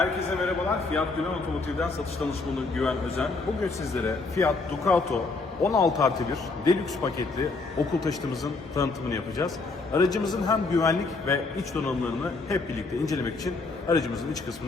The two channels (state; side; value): quieter; right; 3.8 dB